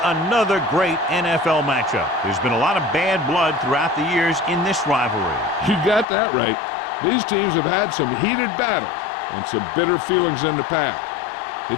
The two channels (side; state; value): right; drops out; at 6.1 s